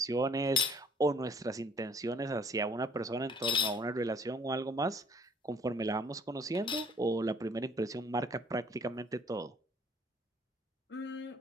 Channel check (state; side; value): normal; both; correlation 0.58